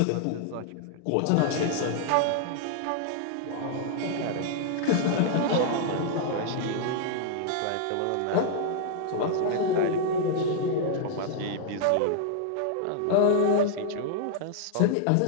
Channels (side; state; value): both; different; correlation -0.01